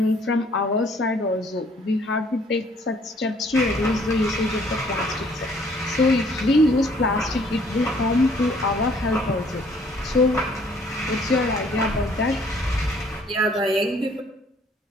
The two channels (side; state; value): both; normal; correlation 0.60